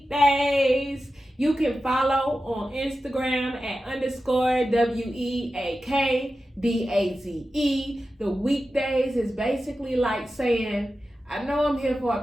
Daze. You can follow on Instagram at _WEAKDAZE. The Weak Daze is basically like saying, I know I'm here for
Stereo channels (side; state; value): both; normal; correlation 0.92